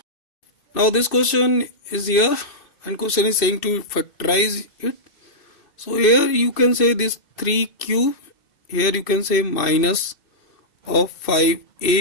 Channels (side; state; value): right; late; 2.6 ms